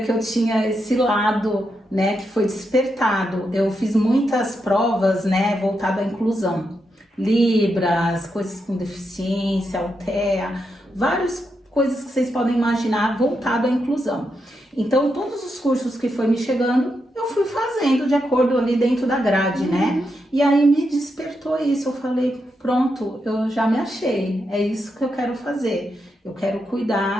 que eu tinha esse lado, né, que foi despertado. Eu fiz muitas provas, né, voltado à inclusão. Libras, coisas com deficiência, Altea, várias coisas que vocês podem imaginar voltado à inclusão. Então, todos os cursos que foi me chegando, eu fui fazendo de acordo ali dentro da grade, né? E aí me despertou isso, eu falei, pronto, eu já me achei, é isso que eu quero fazer. Eu quero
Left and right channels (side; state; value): both; normal; correlation 0.84